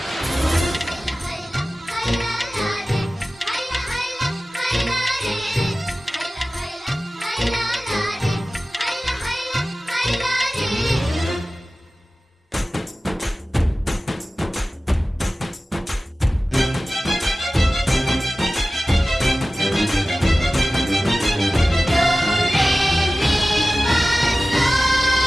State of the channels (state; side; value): normal; both; correlation 0.96